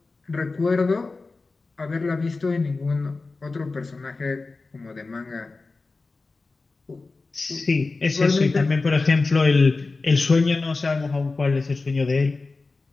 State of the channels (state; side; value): quieter; right; 3.7 dB